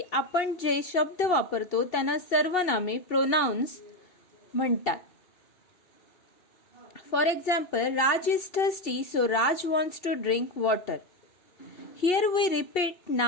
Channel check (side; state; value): right; late; 2.7 ms